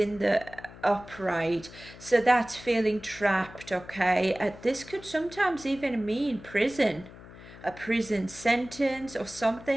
the upright, so that's feeling trapped, okay. This could sometimes even mean prison, a prison sentence or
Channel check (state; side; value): noise; left; hum, 18 dB below the sound